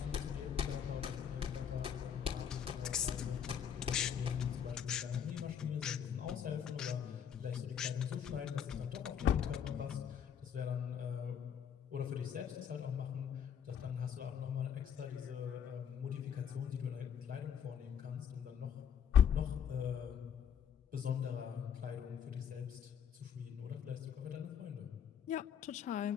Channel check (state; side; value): quieter; right; 8.2 dB